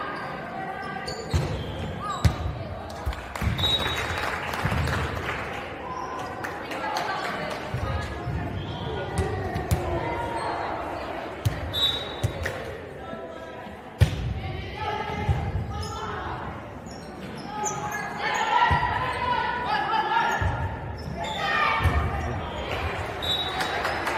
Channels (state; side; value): identical; both; correlation 1.00